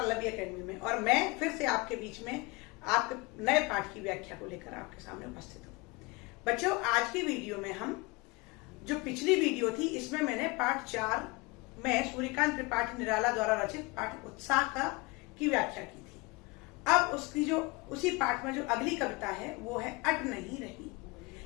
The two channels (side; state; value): right; quieter; 25.8 dB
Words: एकेडमी में। और मैं फिर से आपके बीच में आपके नए पाठ की व्याख्या को लेकर आपके सामने उपस्थित हूँ। बच्चों, आज की वीडियो में हम जो पिछली वीडियो थी इसमें मैंने पाठ 4 में सूर्यकांत त्रिपाठी निराला द्वारा रचित पाठ उत्साह की व्याख्या की थी। अब उसी पाठ में जो अगली कविता है वो है अट नहीं रही।